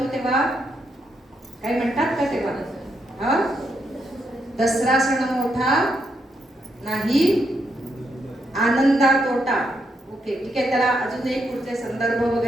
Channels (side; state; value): both; normal; correlation 0.79